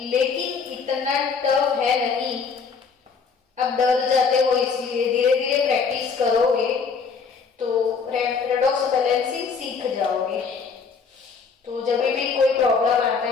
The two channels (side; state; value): right; quieter; 5.4 dB